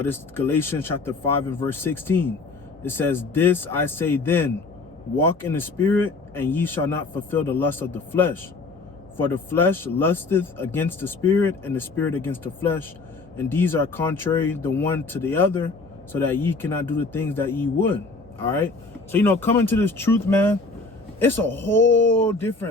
This Galatians chapter 5 and verse 16. It says, "This I say then, walk in the spirit, and ye shall not fulfill the lust of the flesh. For the flesh lusteth against the spirit, and the spirit against the flesh. And these are contrary the one to the other, so that ye cannot do the things that ye would." All right. So, coming to this truth, man, it's a whole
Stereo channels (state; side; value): quieter; right; 3.7 dB